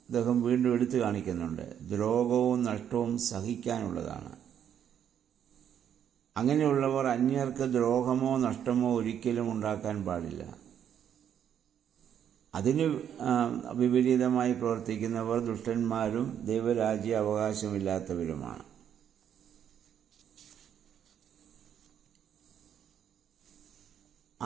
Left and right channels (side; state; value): left; quieter; 9.2 dB